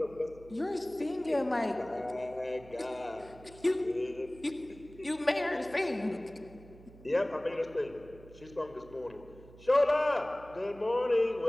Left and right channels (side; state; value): right; noise; hum, 20 dB below the sound